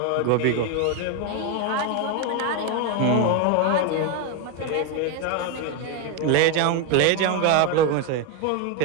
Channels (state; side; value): different; both; correlation 0.02